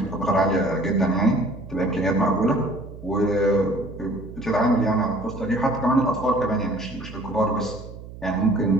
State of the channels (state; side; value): noise; right; hum, 14 dB below the sound